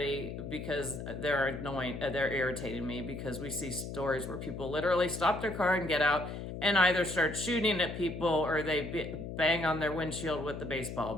because they're annoying, they're irritating me, because we see stories where people literally stop their car and get out and either start shooting at people or they bang on their windshield with the baseball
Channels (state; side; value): noise; left; hum, 7 dB below the sound